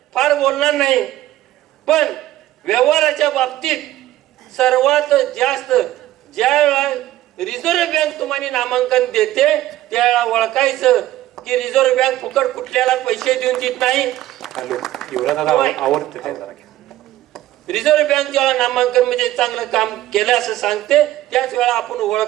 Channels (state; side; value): quieter; left; 14.7 dB